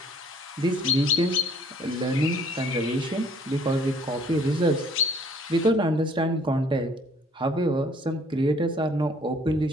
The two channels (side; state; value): both; normal; correlation 0.58